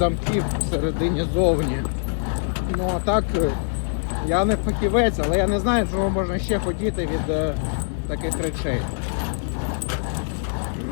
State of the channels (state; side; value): silent; right; digital silence